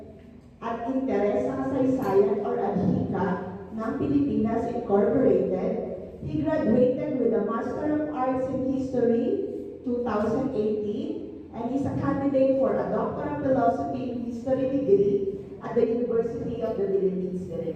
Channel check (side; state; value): both; identical; correlation 1.00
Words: at Interes sa Kasaysayan or ADHICA ng Pilipinas Incorporated. He graduated with a Master of Arts in History 2018 and is a candidate for a Doctor of Philosophy in History degree at the University of the Philippines,